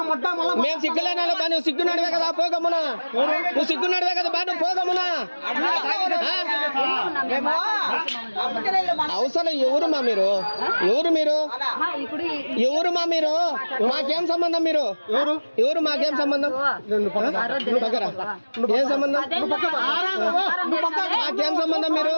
మేము సిగ్గులేనా బా నువ్వు సిగ్గున్నాడువే కదా పోగమ్మునా నువ్వు సిగ్గున్నాడువే కదా బా నువ్వు పోగమ్మునా అవసరం ఎవరు మా మీరు ఎవరు మా మీరు మాకేం సంబంధం మీరు ఎవరు మాకేం సంబంధం ఏం సంబంధం మాకేం సంబంధం మీరు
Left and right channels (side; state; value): both; inverted; correlation -1.00